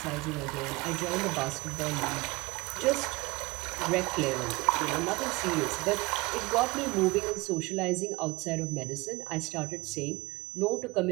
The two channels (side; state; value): left; quieter; 22.7 dB